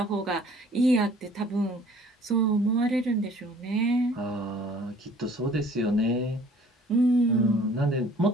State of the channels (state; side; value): normal; both; correlation 0.54